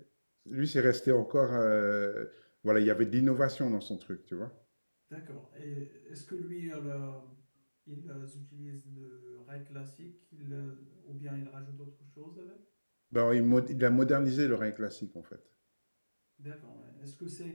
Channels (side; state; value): both; inverted; correlation -1.00